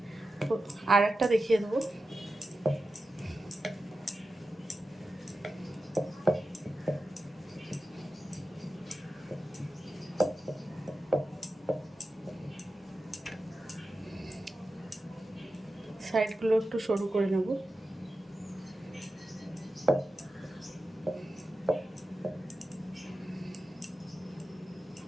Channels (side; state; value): both; normal; correlation 0.92